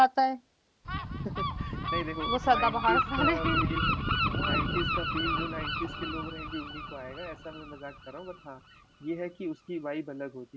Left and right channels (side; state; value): both; identical; correlation 1.00